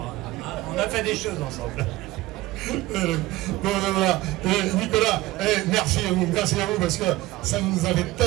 on a fait des choses ensemble. Bon, voilà. Nicolas, merci à vous parce que ça nous avait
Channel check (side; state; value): left; quieter; 18.2 dB